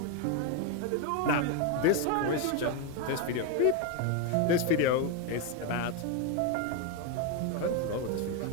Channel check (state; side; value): different; both; correlation 0.02